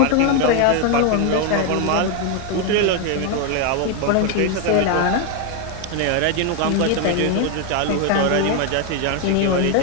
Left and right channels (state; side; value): different; both; correlation 0.01